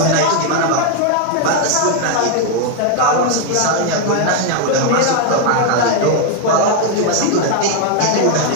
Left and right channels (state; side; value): different; both; correlation 0.00